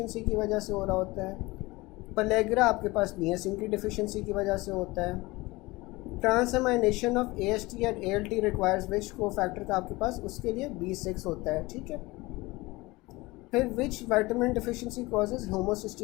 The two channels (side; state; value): right; quieter; 21.7 dB